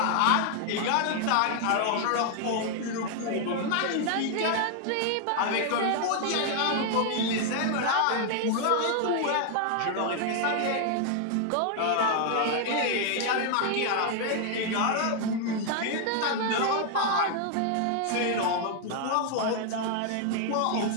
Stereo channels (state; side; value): different; both; correlation 0.00